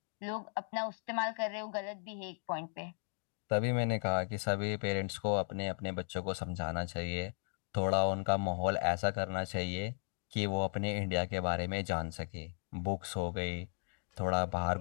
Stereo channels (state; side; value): silent; right; 54 dB below the other